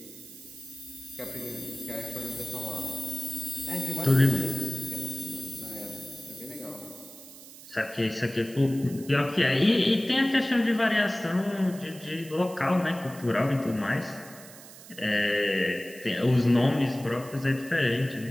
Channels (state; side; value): noise; right; hiss, 18 dB below the sound